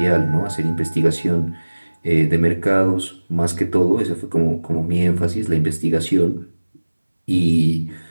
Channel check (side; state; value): both; inverted; correlation -1.00